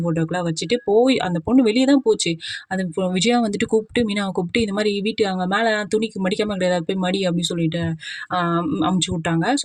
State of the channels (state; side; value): identical; both; correlation 1.00